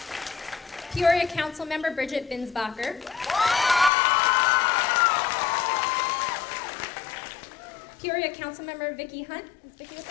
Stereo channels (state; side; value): drops out; right; at 3.9 s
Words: Peoria Council Member Bridget Binsbacher. Peoria Councilmember Vicki Hunt. Is Vicki with